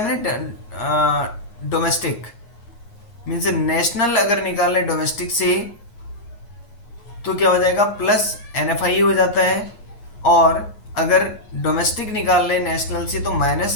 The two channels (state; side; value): late; right; 9.5 ms